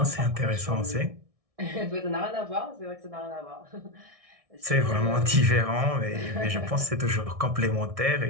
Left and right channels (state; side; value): late; left; 1.6 ms